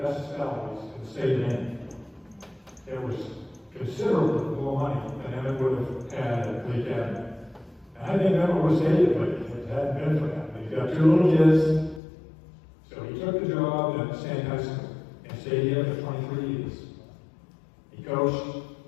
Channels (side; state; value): right; drops out; at 12.0 s